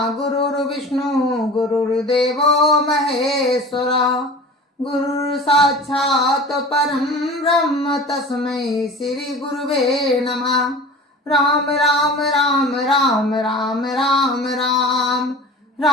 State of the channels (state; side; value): normal; both; correlation 0.38